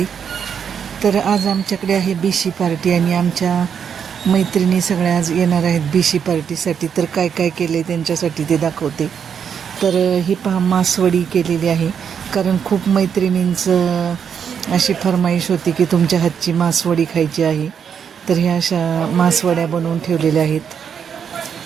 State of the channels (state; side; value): quieter; left; 7.5 dB